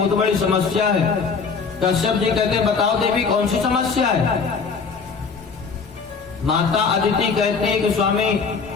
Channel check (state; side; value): quieter; right; 5.2 dB